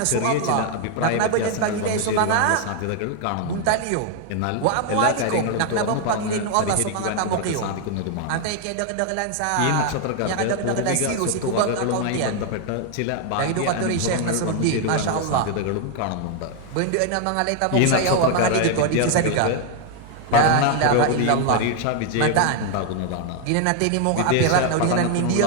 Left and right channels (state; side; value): different; both; correlation 0.00